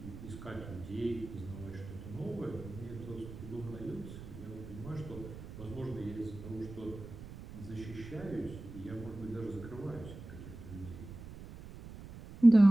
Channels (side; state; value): right; noise; rumble, 13 dB below the sound